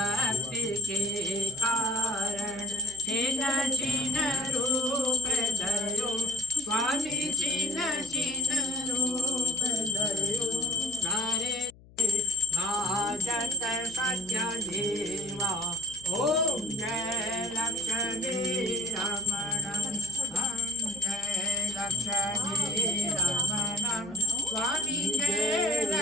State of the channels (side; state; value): left; noise; hum, 24 dB below the sound